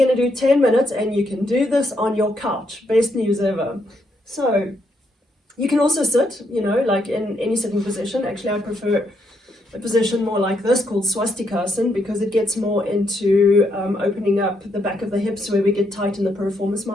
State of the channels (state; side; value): normal; both; correlation 0.77